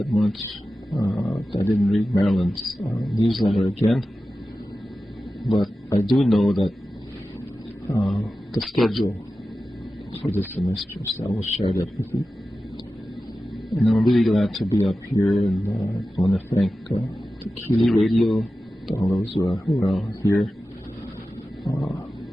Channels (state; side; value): normal; both; correlation 0.94